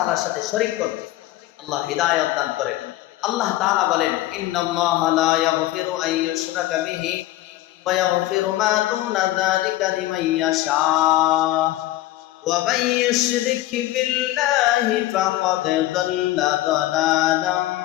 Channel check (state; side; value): quieter; right; 15.8 dB